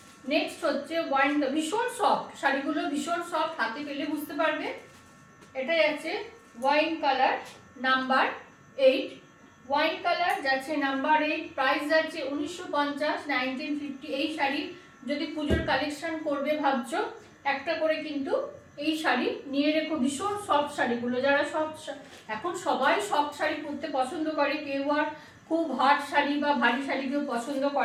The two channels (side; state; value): both; identical; correlation 1.00